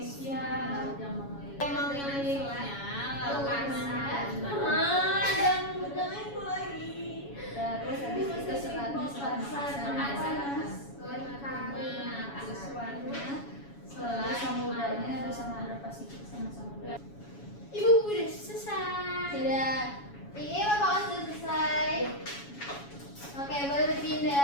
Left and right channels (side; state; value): right; late; 7.2 ms